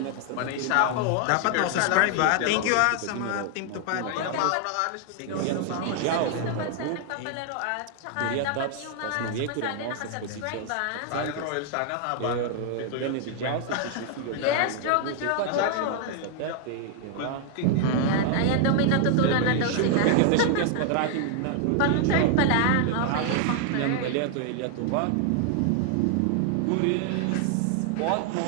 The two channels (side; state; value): both; different; correlation 0.00